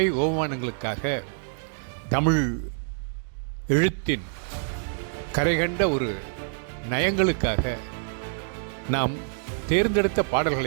ஓமானங்களுக்காக, தமிழ் எழுத்தின் கரைகண்ட ஒரு நயங்களுக்காக நாம் தேர்ந்தெடுத்த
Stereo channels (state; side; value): silent; left; digital silence